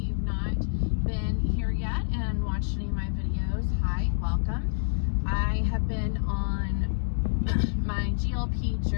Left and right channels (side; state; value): right; silent; digital silence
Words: not been here yet and watched any of my videos, hi, welcome. I have been on my